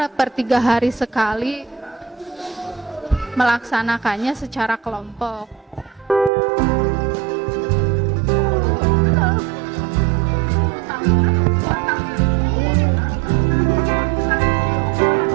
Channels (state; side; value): drops out; left; at 6.3 s